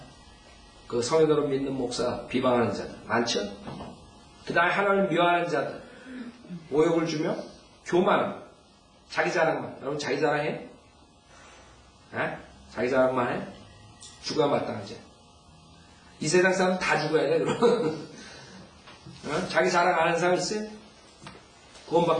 그 성인으로 믿는 목사 비방하는 자들. 많죠? 그 다음에 하나님을 미워하는 자들. 모욕을 주며 교만함. 자기 자랑만. 여러분 자기 자랑해? 자기 자랑만 해? 죽어야 마땅하지. 이 세상 사람 다 죽어야 돼, 그럼. 자기 자랑 안 하는 사람 있어요?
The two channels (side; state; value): both; identical; correlation 1.00